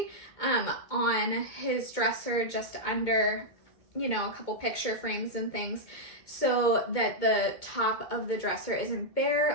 On his dresser, just under, you know, a couple picture frames and things, so that the top of the dresser isn't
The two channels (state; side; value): late; right; 2.2 ms